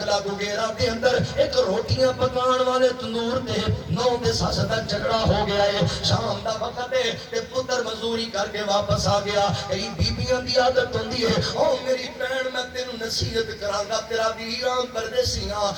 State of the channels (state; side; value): identical; both; correlation 1.00